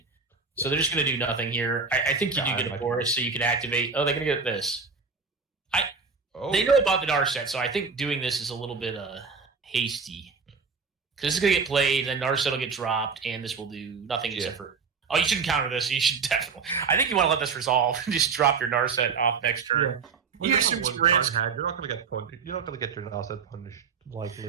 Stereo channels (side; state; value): left; quieter; 5.2 dB